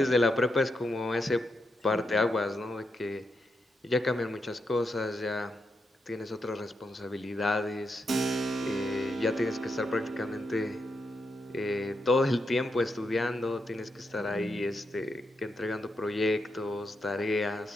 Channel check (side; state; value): both; normal; correlation 0.84